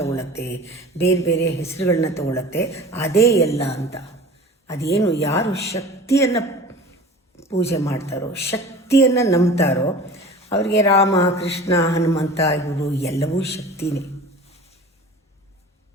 ಬೇರೆ ಬೇರೆ ಹೆಸರುಗಳನ್ನ ತಗೊಳ್ಳುತ್ತೆ. ಅದೇ ಎಲ್ಲ ಅಂತ. ಅದೇನು ಯಾರು ಶಕ್ತಿಯನ್ನು ಪೂಜೆ ಮಾಡ್ತಾರೋ, ಶಕ್ತಿಯನ್ನು ನಂಬ್ತಾರೋ ಅವರಿಗೆ ರಾಮ, ಕೃಷ್ಣ, ಹನುಮಂತ ಇವರು ಎಲ್ಲವೂ ಶಕ್ತಿನೇ.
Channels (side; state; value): both; normal; correlation 0.39